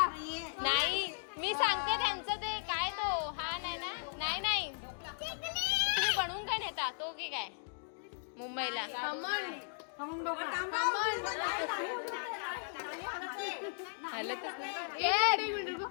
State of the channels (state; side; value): silent; right; digital silence